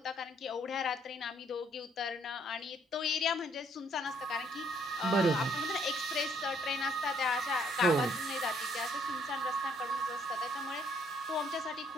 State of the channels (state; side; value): normal; both; correlation 0.66